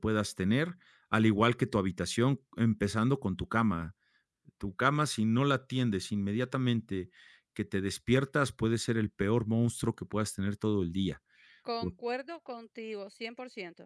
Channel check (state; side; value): identical; both; correlation 1.00